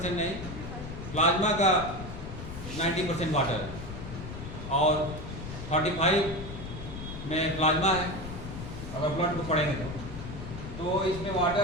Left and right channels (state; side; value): noise; left; rumble, 9 dB below the sound